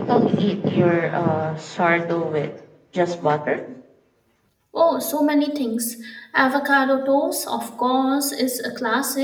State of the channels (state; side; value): identical; both; correlation 1.00